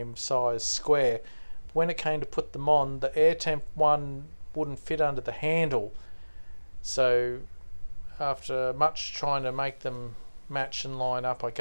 size square. When it came to put them on, the Air Temp one wouldn't fit under the handle, so after much trying to make them match and line up, I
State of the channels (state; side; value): inverted; both; correlation -1.00